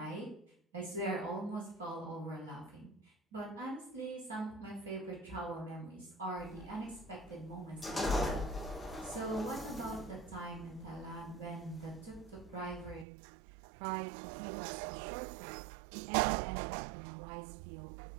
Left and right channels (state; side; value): drops out; left; at 13.1 s